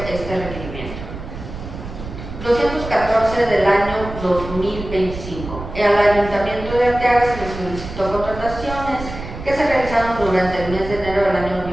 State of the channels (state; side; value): noise; right; rumble, 10 dB below the sound